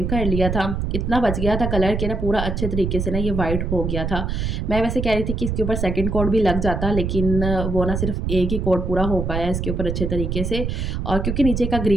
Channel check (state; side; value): noise; right; rumble, 2 dB below the sound